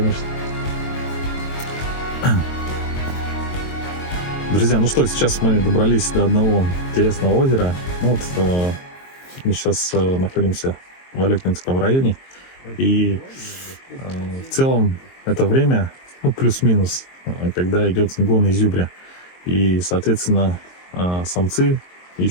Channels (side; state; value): right; late; 22 ms